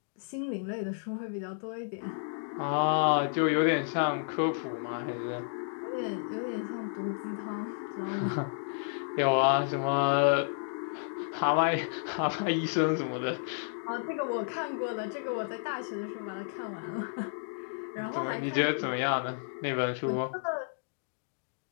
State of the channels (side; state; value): right; silent; digital silence